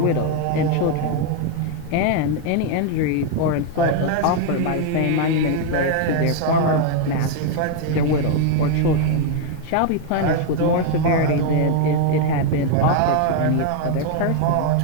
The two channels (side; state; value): both; different; correlation 0.01